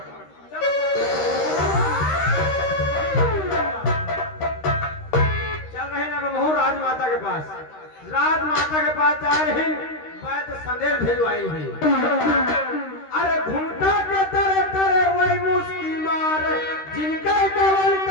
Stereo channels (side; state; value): right; late; 13 ms